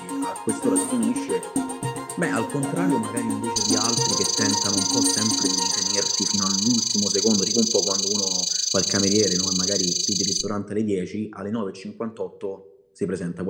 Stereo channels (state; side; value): identical; both; correlation 1.00